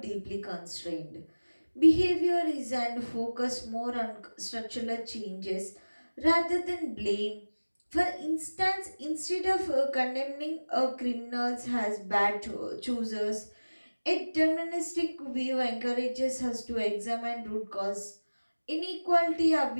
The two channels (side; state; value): both; inverted; correlation -1.00